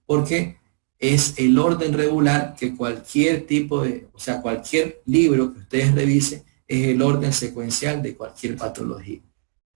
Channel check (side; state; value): left; silent; digital silence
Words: porque es el orden regular que cualquier tipo de, o sea, cualquier libro que ustedes revisen es el orden secuencial de cualquier patología.